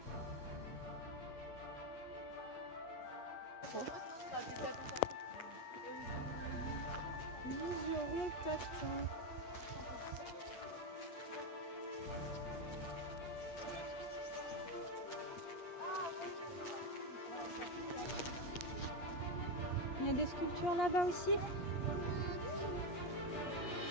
trop. Museron Tatin. Il y a des sculptures là-bas aussi. Ça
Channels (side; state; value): right; late; 8.4 ms